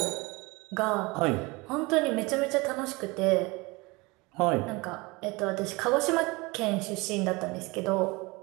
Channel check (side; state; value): left; quieter; 24.7 dB